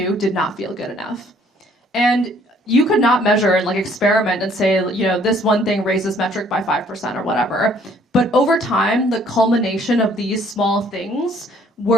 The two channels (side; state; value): both; normal; correlation 0.61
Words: did not feel good enough. And you could not measure and experiment and say, this one thing raises metric by 5% or whatever. But over time, the culmination of these small things